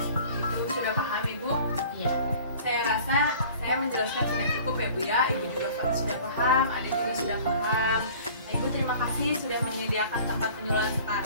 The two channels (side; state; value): both; inverted; correlation -0.46